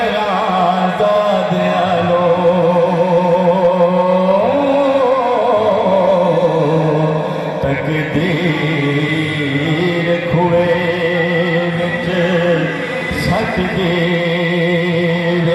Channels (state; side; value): identical; both; correlation 1.00